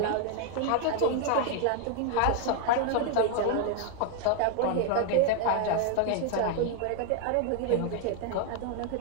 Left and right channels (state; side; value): different; both; correlation 0.00